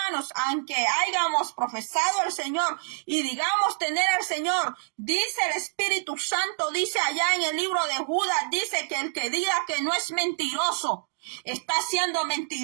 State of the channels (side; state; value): left; silent; digital silence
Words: aunque hayamos profesado al Señor y digamos tener al Señor, dice el Espíritu Santo, dice allá en el libro de Judas, dice que el que diga que no es mentiroso, está siendo